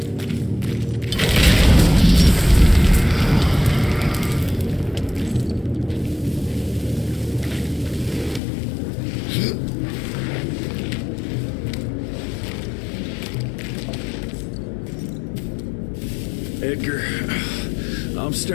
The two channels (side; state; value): right; drops out; at 8.4 s